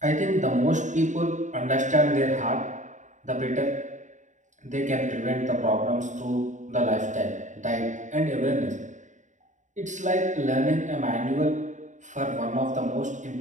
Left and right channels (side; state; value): left; late; 0.36 ms